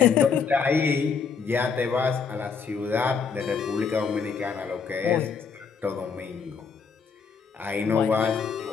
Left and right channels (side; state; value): right; quieter; 5.8 dB